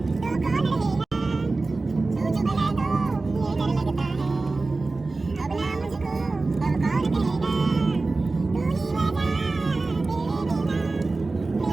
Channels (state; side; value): quieter; left; 3.5 dB